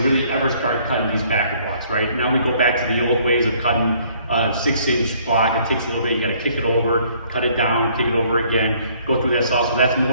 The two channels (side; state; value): both; inverted; correlation -0.62